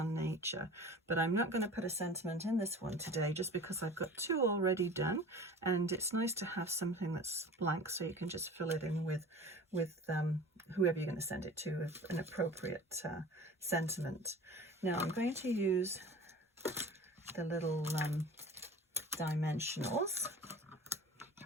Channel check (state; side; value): normal; both; correlation 0.40